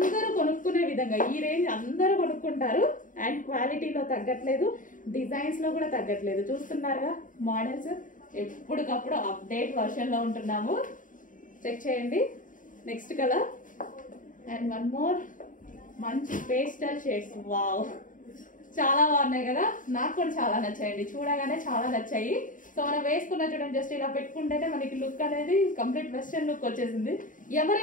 కొనుక్కునే విధంగా ఈ రేంజ్ అందరూ కొనుక్కుంటారు. అండ్ క్వాలిటీలో తగ్గట్లేదు, డిజైన్స్ లో కూడా తగ్గట్లేదు. చూస్తున్నారుగా మోడల్స్ ఎప్పటికప్పుడు అప్డేట్ వర్షన్ లో ఉంటున్నాము. చెక్ చేయండి. Next colour and one more మంచి పేస్టల్ షేడ్స్. వావ్, చాలా బాగున్నాయి కదా, నాకు కూడా చాలా నచ్చాయండి. చూడగానే చాలా నచ్చాయి. సో మనం వేసుకున్న చూడండి, జస్ట్ ఇలా పెట్టుకుంటేనే మనకి లుక్ అనేది కంప్లీట్ వెస్టర్న్ లుక్ వచ్చేసింది.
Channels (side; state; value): right; late; 0.38 ms